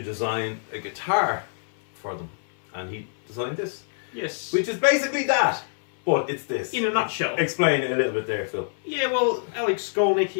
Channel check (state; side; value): silent; right; 61 dB below the other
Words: design a guitar for them. And he designed this. Yes. Which is basically that, but it's this. In a nutshell. Explain it a little bit there, Phil. Yeah, well, Alex Skolnick,